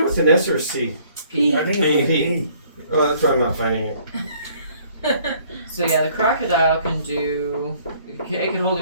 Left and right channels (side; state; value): both; inverted; correlation -0.59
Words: with an S or a C? P. I think it's a P. Oh, that's why I'm not finding it. So yeah, the crocodile can do. It can hold